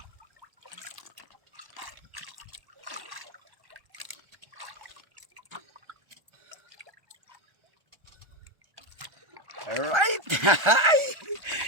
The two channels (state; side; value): late; left; 1.3 ms